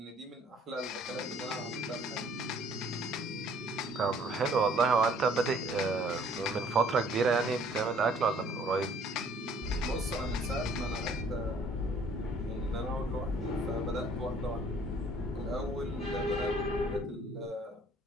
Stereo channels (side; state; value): both; normal; correlation 0.58